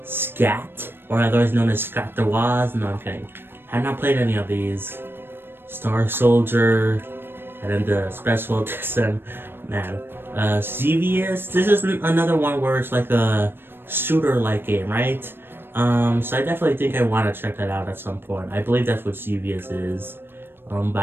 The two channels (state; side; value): late; left; 0.10 ms